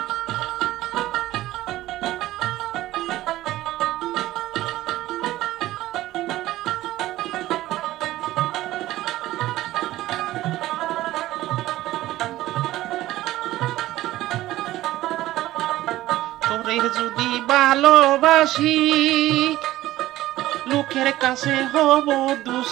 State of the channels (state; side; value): quieter; left; 15.8 dB